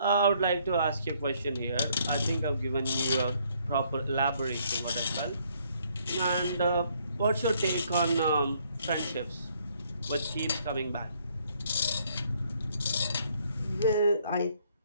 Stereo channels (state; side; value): inverted; both; correlation -0.67